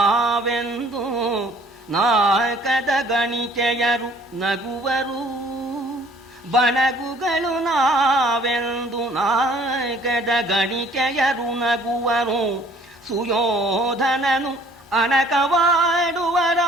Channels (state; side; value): normal; both; correlation 0.56